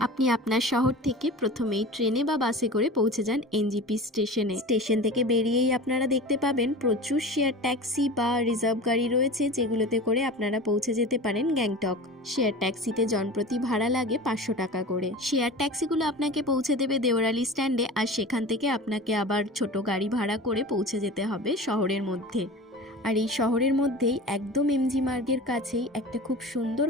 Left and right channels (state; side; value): normal; both; correlation 0.34